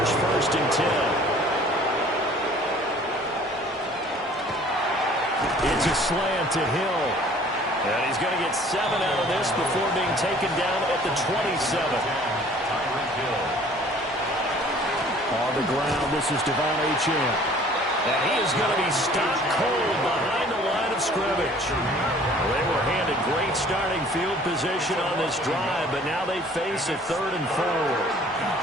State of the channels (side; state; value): both; normal; correlation 0.52